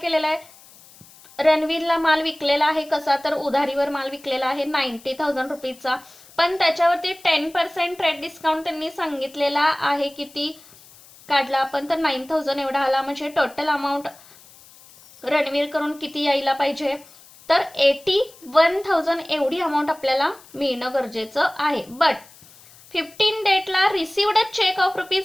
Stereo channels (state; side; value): noise; left; hiss, 24 dB below the sound